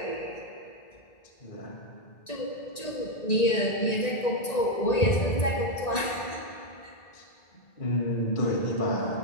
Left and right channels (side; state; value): right; late; 1.9 ms